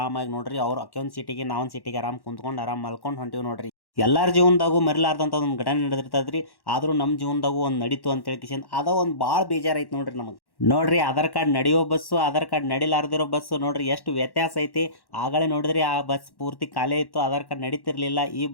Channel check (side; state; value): right; late; 1.1 ms